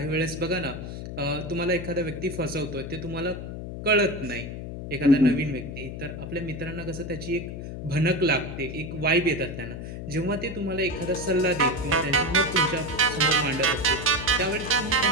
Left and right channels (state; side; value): noise; left; hum, 8 dB below the sound